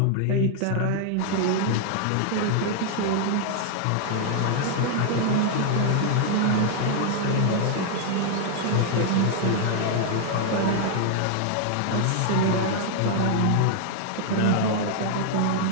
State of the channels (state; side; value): different; both; correlation 0.00